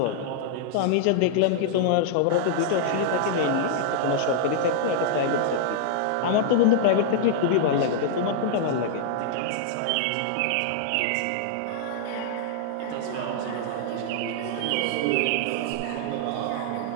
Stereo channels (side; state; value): both; different; correlation -0.01